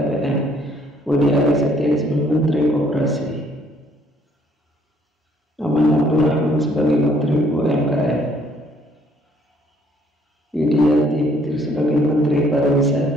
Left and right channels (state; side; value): normal; both; correlation 0.64